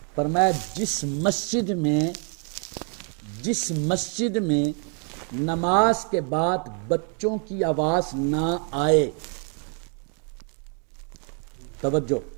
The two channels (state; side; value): quieter; left; 39.8 dB